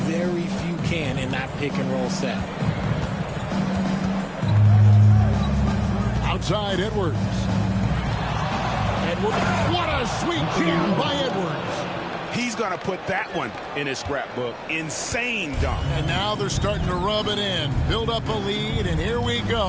very few can in that pick-and-roll set. Outside, Edwards. What a sweet jam by Edwards. He's going to put that one in his scrapbook. Insane dunk. And now they're starting to rub it in. Build up a lead, and here we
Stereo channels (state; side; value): identical; both; correlation 1.00